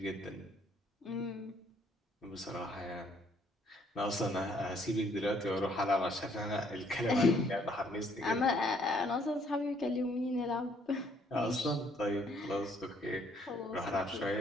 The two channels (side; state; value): both; normal; correlation 0.65